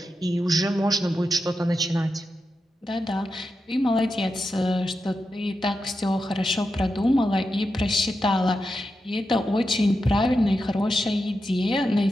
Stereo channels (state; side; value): normal; both; correlation 0.89